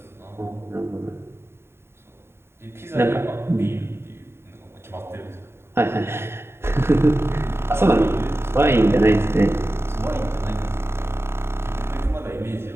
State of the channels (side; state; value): left; late; 0.12 ms